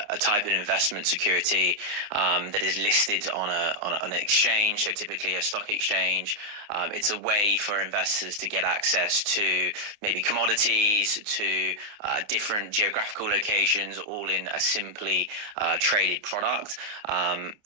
type of investment security that is listed on an exchange, so typically a stock exchange. It's a way for investors to get access to maybe commodities, to different geographical locations, all in a simply traded product. And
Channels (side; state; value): left; late; 29 ms